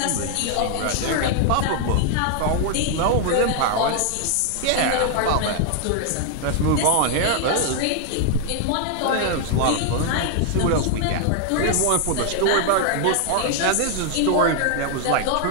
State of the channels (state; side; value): different; both; correlation 0.00